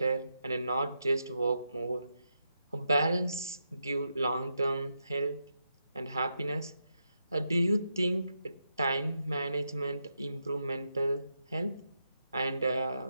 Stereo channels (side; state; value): both; inverted; correlation -0.84